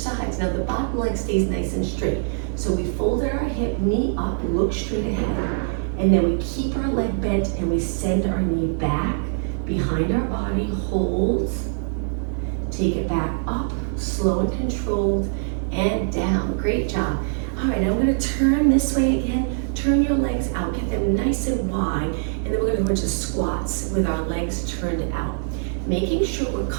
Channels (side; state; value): left; silent; 63 dB below the other